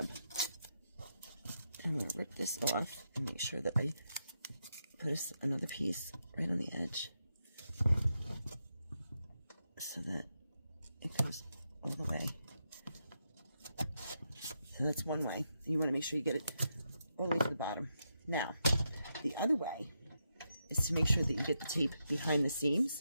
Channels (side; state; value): both; inverted; correlation -0.84